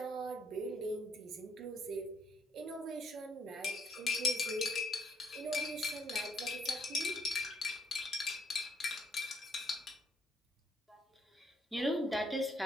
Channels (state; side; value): normal; both; correlation 0.69